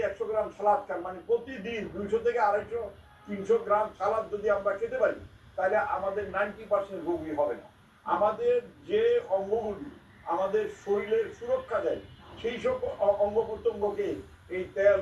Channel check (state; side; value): identical; both; correlation 1.00